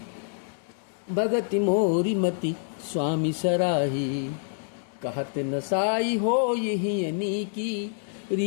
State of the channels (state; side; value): silent; right; digital silence